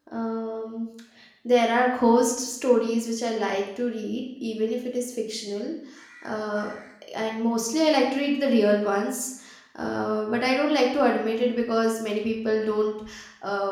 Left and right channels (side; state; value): both; identical; correlation 1.00